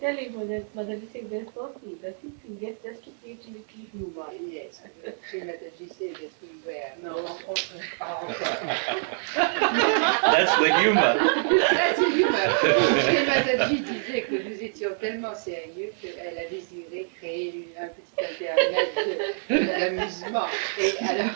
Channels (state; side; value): silent; left; 61 dB below the other